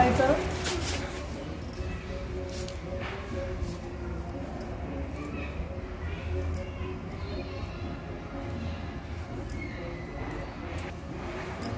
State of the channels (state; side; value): identical; both; correlation 1.00